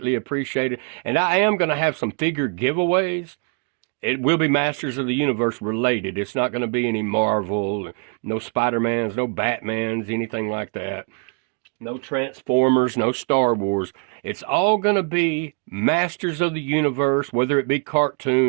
appreciated. And I am going to have some figure giveaways. It will be Masters of the Universe related. It's not going to be any Marvel, no Spider-Mans, no Batmans, anything like that. No Transformers, no Star Wars. It's all going to be Masters of the Universe, whether it be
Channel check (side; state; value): left; quieter; 39.7 dB